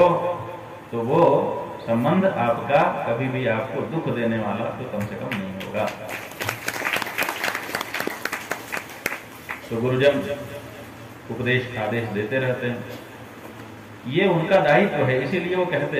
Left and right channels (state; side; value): identical; both; correlation 1.00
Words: तो वो संबंध आपका कभी भी आपको दुख देने वाला तो कम से कम नहीं होगा। तो गुरुजन उपदेश आदेश देते रहते हैं, ये उनका दायित्व है, इसीलिए वो कहते